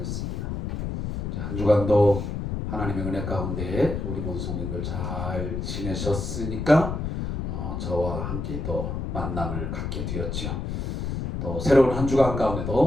자, 한 주간도 하나님의 은혜 가운데 우리 모든 성도님들 잘 지내셨으니까 저와 함께 또 만남을 갖게 되었지요. 또 새로운 한 주간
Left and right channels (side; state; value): left; noise; rumble, 3 dB below the sound